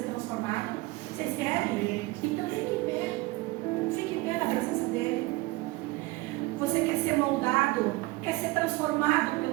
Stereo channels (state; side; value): quieter; left; 21.5 dB